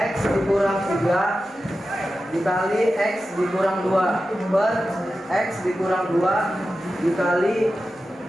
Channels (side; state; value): both; normal; correlation 0.92